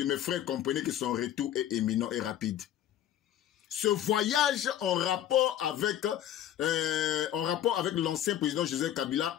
Mes frères, comprenez que son retour est imminent et rapide. Ce voyage en rapport avec l'ancien président Joseph Kabila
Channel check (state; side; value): quieter; right; 11.3 dB